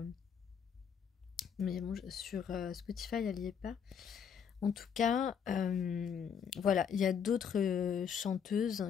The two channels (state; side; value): quieter; right; 7.4 dB